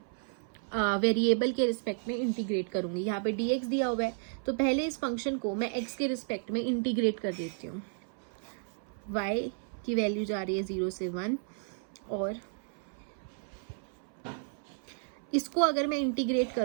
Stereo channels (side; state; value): left; silent; 56 dB below the other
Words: वेरिएबल के रिस्पेक्ट में इंटीग्रेट करूंगी. यहाँ पे dx दिया हुआ है, तो पहले इस फंक्शन को मैं x के रिस्पेक्ट में इंटीग्रेट कर देती हूँ. y की वैल्यू जा रही है 0 से 1, और इसको अगर मैं इंटीग्रेट